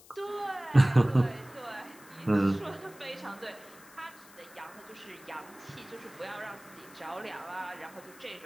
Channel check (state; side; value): noise; left; hiss, 22 dB below the sound